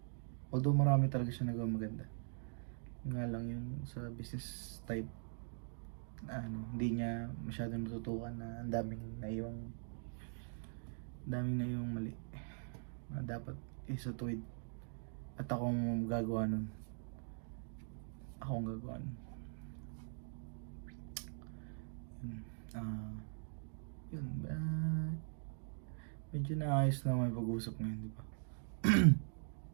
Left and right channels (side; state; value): left; silent; digital silence